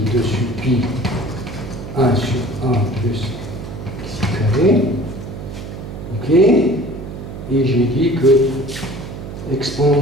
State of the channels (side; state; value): right; noise; hum, 10 dB below the sound